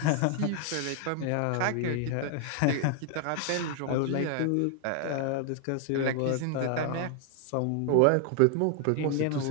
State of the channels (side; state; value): both; different; correlation 0.00